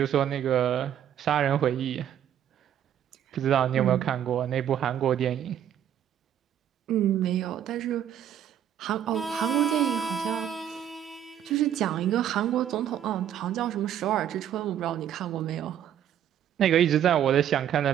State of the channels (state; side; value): quieter; left; 10.1 dB